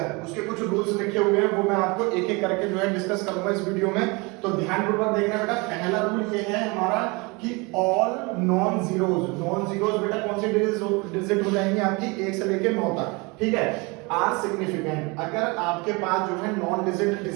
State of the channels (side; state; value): left; quieter; 27.3 dB